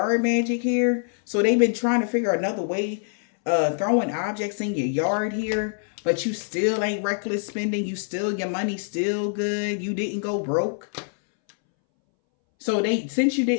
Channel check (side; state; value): right; silent; 62 dB below the other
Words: magic here. So they've been trying to figure another way, throwing objects in your yard here. But you still ain't reckless spending. Your money still good. You didn't go broke. So since you